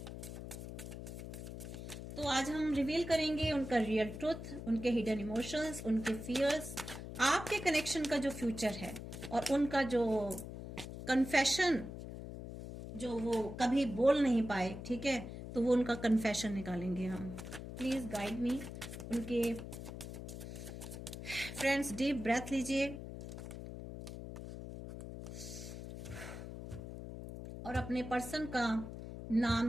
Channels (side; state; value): left; noise; hum, 9 dB below the sound